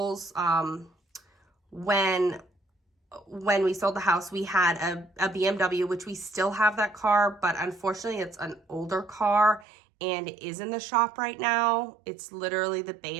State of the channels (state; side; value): drops out; left; at 9.7 s